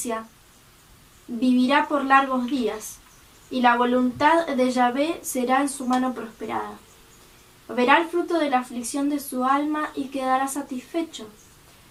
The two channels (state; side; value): identical; both; correlation 1.00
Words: vivirá por largos días, y la voluntad de Yahvé será en su mano prosperada. Verá el fruto de la aflicción de su alma y quedará satisfecho.